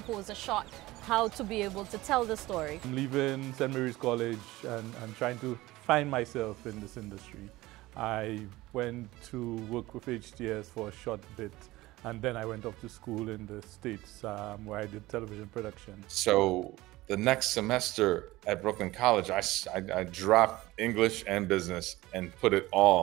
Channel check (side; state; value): left; quieter; 18.6 dB